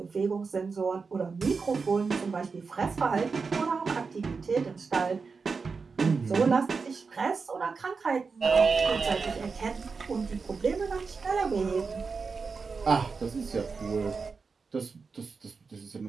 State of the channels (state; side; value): quieter; left; 4.8 dB